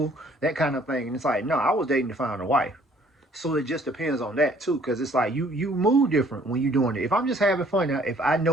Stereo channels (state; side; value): normal; both; correlation 0.59